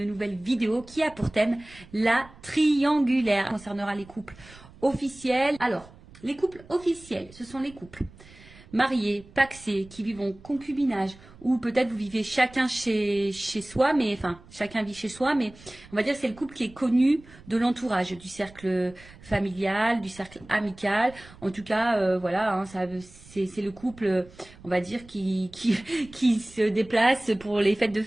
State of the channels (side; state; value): right; noise; rumble, 22 dB below the sound